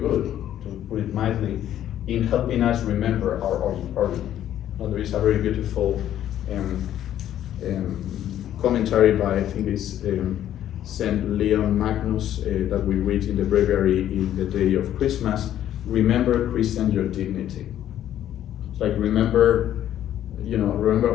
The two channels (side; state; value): right; quieter; 11.5 dB